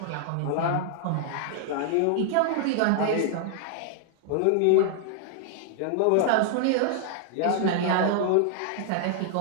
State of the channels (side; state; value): both; different; correlation 0.00